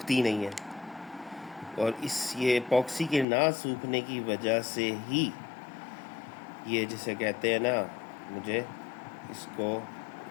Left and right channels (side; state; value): right; drops out; at 3.2 s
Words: नहीं है, और ये एपॉक्सी के ना सूखने की वजह से ही ये जिसे कहते हैं ना, मुझे इसको